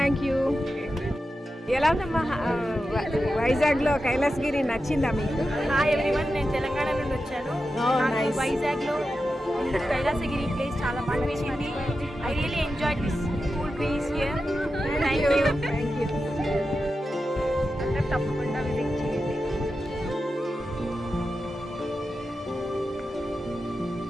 you. ఎలా ఉందమ్మా వైజాగ్లో కైలాసగిరి? నచ్చిందా మీకు? హాయ్ ఎవ్రీవన్, నేను తెలంగాణ నుండి వచ్చాను. Oh, నాకు nice. వైజాగ్లో కైలాసగిరి ప్లేస్ చాలా బాగా నచ్చింది. I really enjoy this cool place here. Thank you. Thank you. అందరూ తప్పకుండా విజిట్ చేయండి.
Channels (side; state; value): both; normal; correlation 0.91